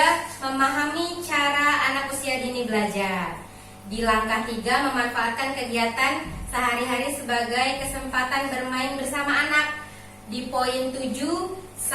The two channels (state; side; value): identical; both; correlation 1.00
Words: memahami cara anak usia dini belajar. Di langkah 3, memanfaatkan kegiatan sehari-hari sebagai kesempatan bermain bersama anak. Di poin 7